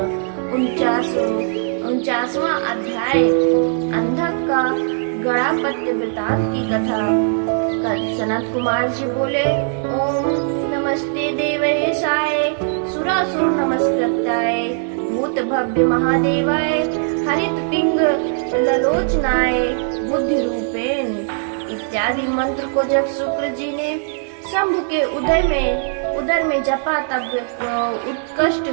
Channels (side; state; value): left; silent; 66 dB below the other